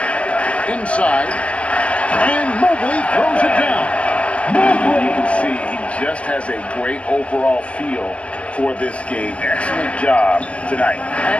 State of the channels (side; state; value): right; late; 0.062 ms